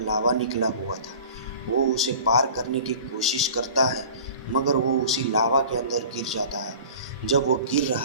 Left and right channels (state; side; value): inverted; both; correlation -0.43